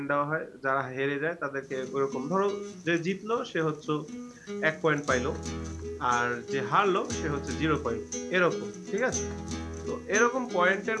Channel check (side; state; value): both; identical; correlation 1.00